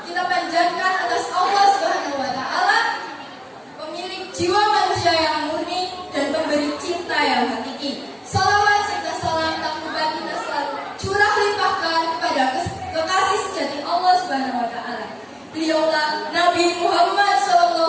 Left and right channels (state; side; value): identical; both; correlation 1.00